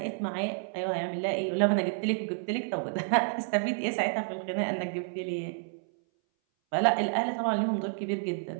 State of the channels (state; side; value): silent; left; 58 dB below the other